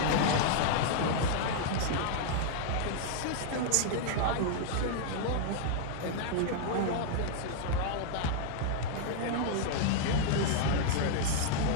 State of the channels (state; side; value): different; both; correlation -0.01